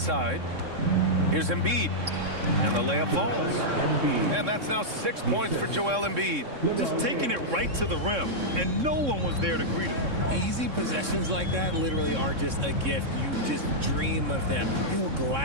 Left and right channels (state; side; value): late; left; 3.6 ms